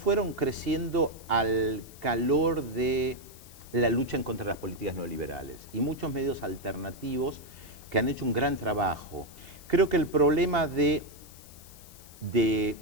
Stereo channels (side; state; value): left; noise; hiss, 21 dB below the sound